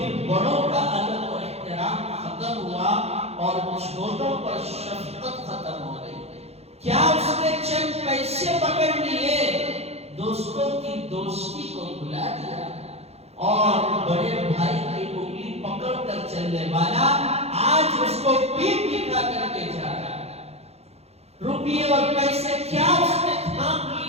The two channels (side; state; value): left; late; 0.30 ms